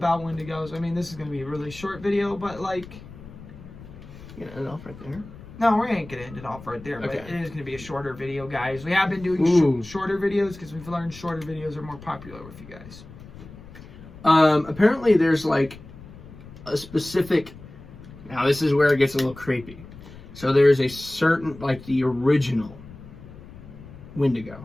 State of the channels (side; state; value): left; noise; rumble, 17 dB below the sound